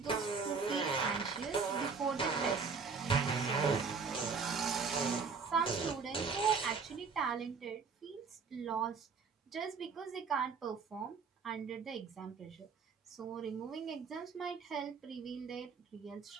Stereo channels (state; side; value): quieter; left; 5.3 dB